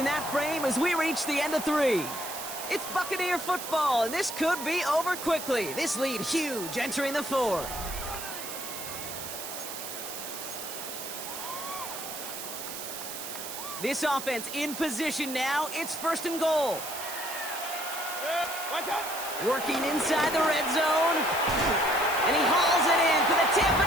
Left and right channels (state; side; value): noise; right; hiss, 8 dB below the sound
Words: that frame as we reach the end of 3. It's Buccaneer football, and this could be over quickly. This lead huge entering the 4th. This offense in position now. It's 1st and goal. What's up? Working inside the red zone. And he hauls it in for the Tampa